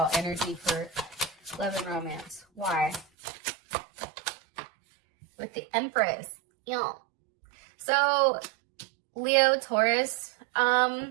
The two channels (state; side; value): drops out; left; at 3.1 s